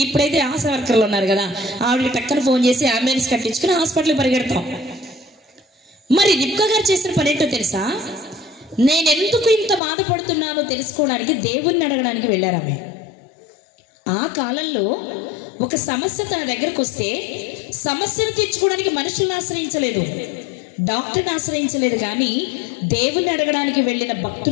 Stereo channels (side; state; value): right; drops out; at 9.8 s